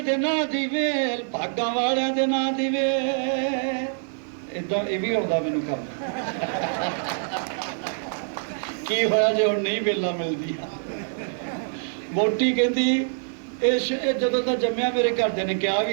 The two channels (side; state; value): left; silent; 62 dB below the other